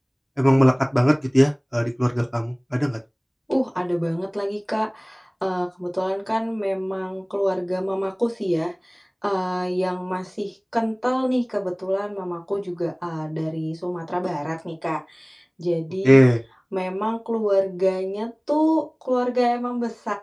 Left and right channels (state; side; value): identical; both; correlation 1.00